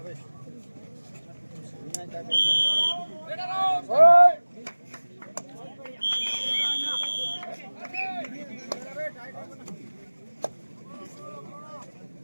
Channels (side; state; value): both; inverted; correlation -1.00